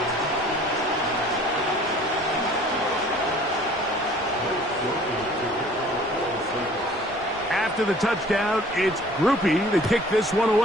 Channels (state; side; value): normal; both; correlation 0.51